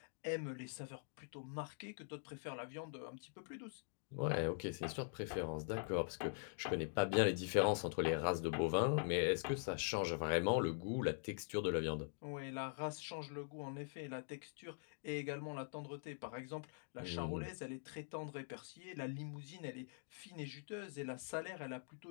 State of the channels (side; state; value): right; silent; digital silence